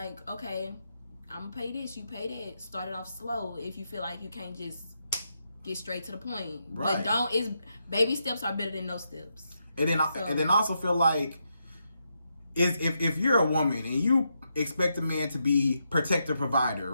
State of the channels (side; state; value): both; inverted; correlation -0.83